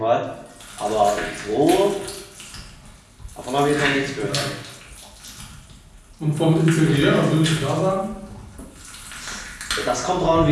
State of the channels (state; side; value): identical; both; correlation 1.00